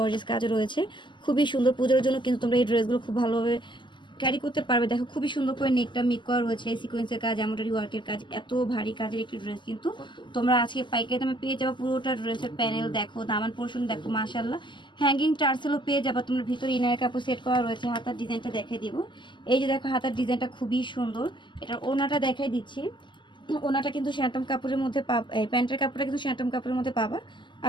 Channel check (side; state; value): right; late; 0.23 ms